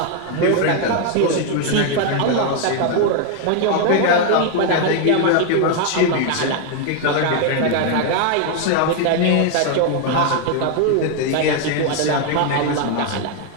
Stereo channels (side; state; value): both; different; correlation 0.01